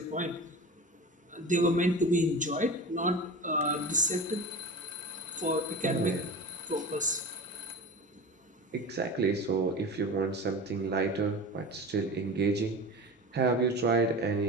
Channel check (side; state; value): both; normal; correlation 0.32